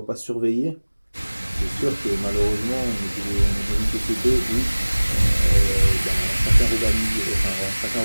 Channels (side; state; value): both; inverted; correlation -1.00